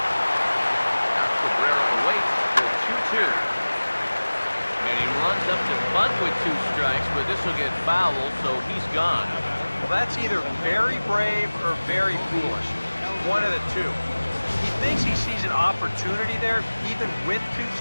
Now Cabrera awaits the 2-2. And he runs up to bunt with 2 strikes, but this will get fouled, so he's gone. Well, that's either very brave or very foolish. One of the two. He thinks he sees an opportunity there, even with 2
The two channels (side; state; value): both; inverted; correlation -1.00